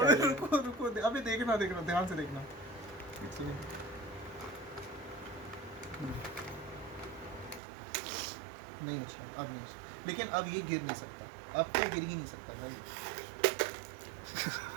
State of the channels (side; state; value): left; drops out; at 7.6 s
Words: रुको रुको, अभी देखना ध्यान से देखना। नहीं उछला, अब नहीं उछला, लेकिन अब ये गिर नहीं सकता, अब तो गिर ही नहीं सकता भाई।